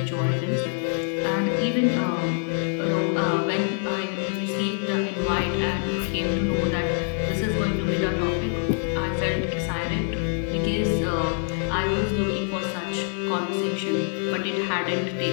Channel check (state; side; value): silent; right; 62 dB below the other